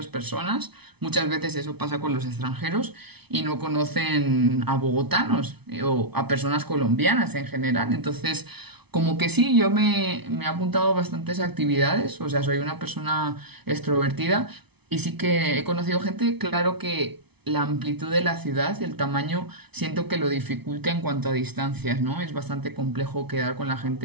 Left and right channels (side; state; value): left; late; 0.99 ms